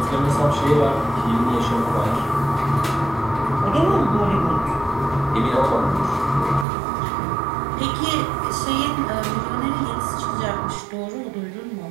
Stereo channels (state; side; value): drops out; left; at 6.7 s